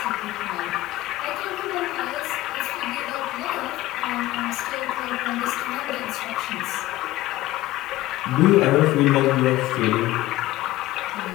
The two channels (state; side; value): quieter; right; 16.8 dB